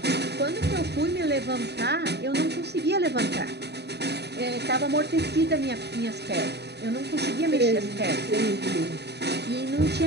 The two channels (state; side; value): late; left; 0.48 ms